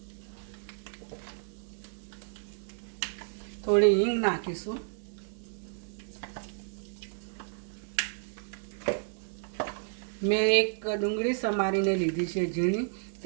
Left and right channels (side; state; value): left; silent; 57 dB below the other